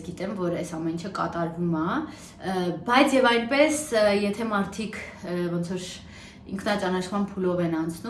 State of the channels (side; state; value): both; identical; correlation 1.00